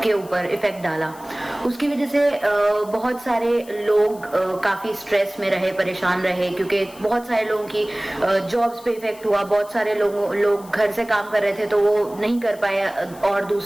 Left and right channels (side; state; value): left; noise; hiss, 22 dB below the sound